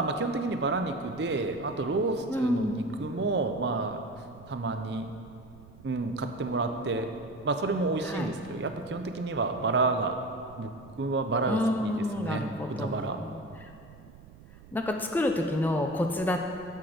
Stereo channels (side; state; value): right; noise; rumble, 20 dB below the sound